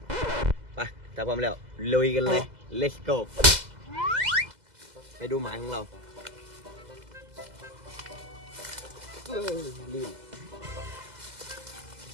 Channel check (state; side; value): late; left; 2.0 ms